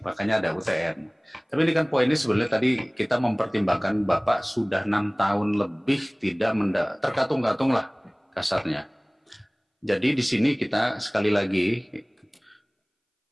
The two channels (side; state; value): both; identical; correlation 1.00